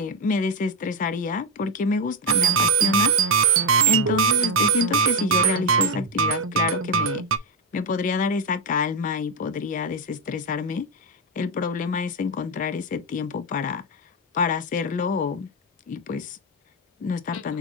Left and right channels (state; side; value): normal; both; correlation 0.06